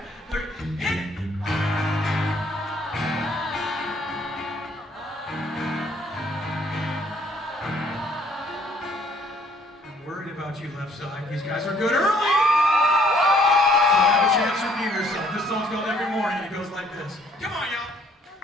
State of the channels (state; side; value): normal; both; correlation 0.63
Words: 1, 2, 3, hit it! I'm worried about you left side. These guys are good early! So have a chance to redeem yourself. This song's called Every Morning, it goes like this. Come on, y'all!